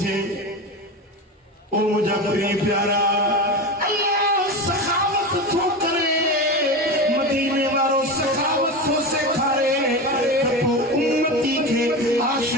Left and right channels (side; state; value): both; normal; correlation 0.23